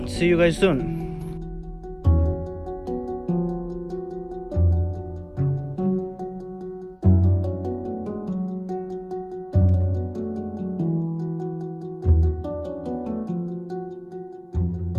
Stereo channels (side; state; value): both; identical; correlation 1.00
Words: see you guys soon.